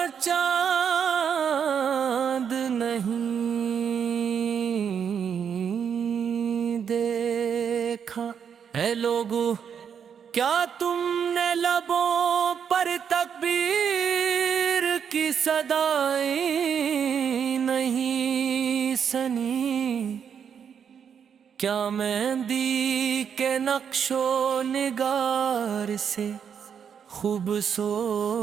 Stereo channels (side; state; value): left; quieter; 7.6 dB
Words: چاند نہیں دیکھا۔ اے لوگو کیا تم نے لبوں پر تکبیر کی صدائیں نہیں سنی؟ کیا مہندی کے نقش و نگار سے